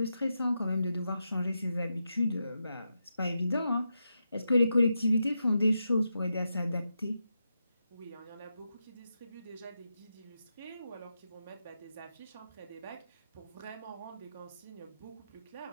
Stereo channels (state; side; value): inverted; both; correlation -0.87